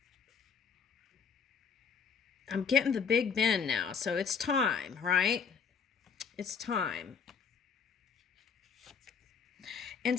I'm getting the Big Bend now. So it's time, right? It's time.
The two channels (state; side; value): quieter; right; 6.2 dB